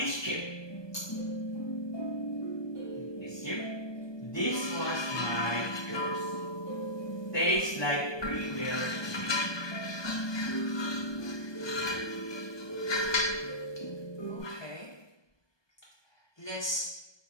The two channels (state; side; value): late; right; 1.2 ms